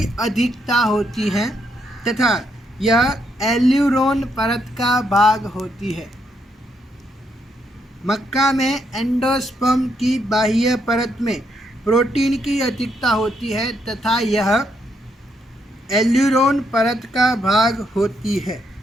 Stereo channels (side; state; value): both; normal; correlation 0.76